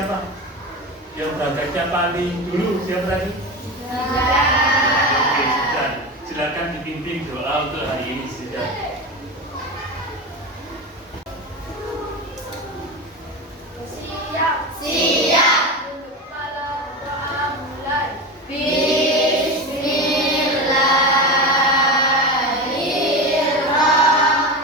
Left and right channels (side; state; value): both; normal; correlation 0.23